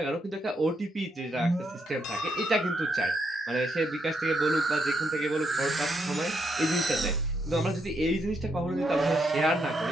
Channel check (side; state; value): both; normal; correlation 0.78